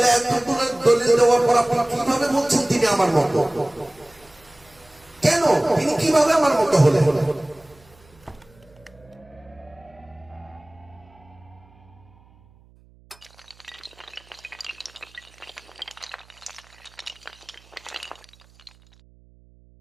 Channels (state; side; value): noise; right; hum, 28 dB below the sound